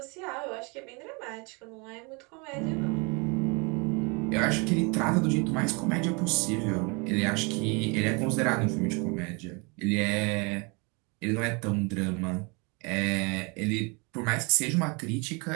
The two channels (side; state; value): left; quieter; 30.7 dB